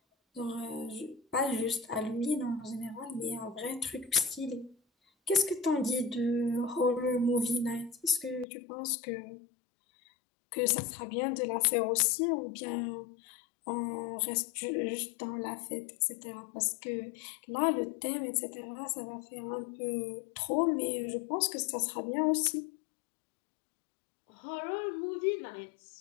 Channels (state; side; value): drops out; right; at 8.5 s